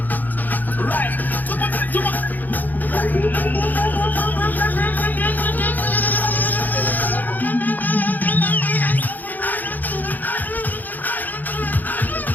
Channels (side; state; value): right; late; 0.084 ms